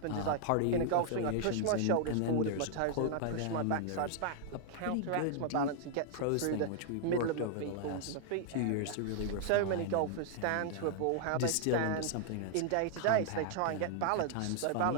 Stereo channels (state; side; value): different; both; correlation 0.00